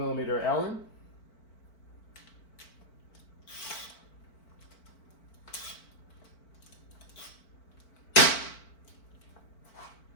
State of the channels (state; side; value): late; right; 4.5 ms